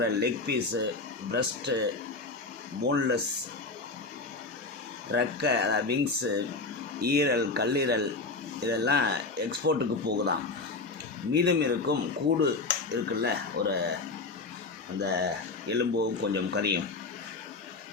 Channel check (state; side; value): quieter; right; 3.7 dB